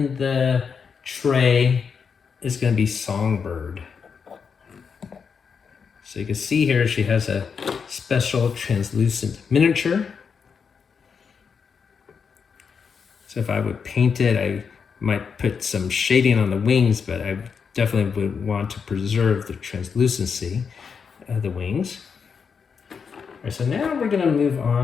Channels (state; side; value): quieter; right; 6.1 dB